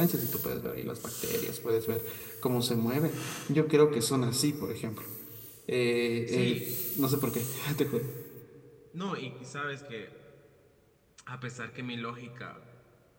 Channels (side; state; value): both; identical; correlation 1.00